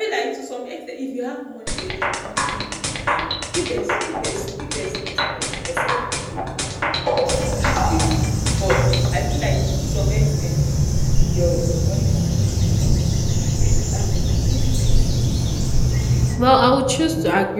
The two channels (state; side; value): identical; both; correlation 1.00